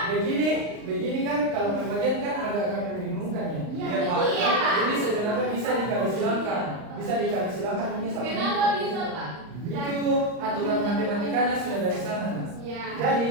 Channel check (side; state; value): left; late; 39 ms